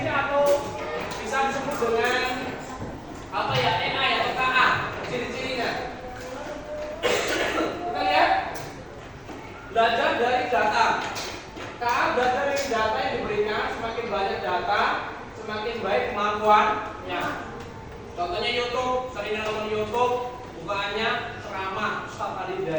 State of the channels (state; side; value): identical; both; correlation 1.00